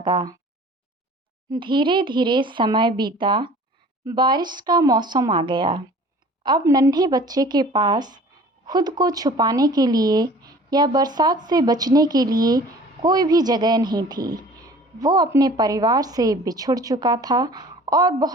धीरे धीरे समय बीता। बारिश का मौसम आ गया। अब नन्हे बच्चे के पास खुद को छुपाने के लिए या बरसात से बचने के लिए कोई भी जगह नहीं थी। वो अपने परिवार से बिछुड़ चुका था और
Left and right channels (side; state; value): both; normal; correlation 0.47